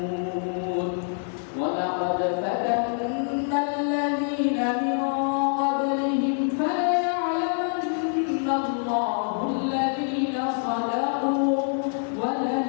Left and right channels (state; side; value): silent; right; 58 dB below the other